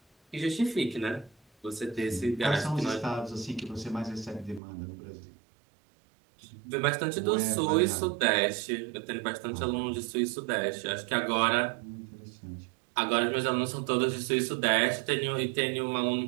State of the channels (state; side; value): drops out; left; at 4.6 s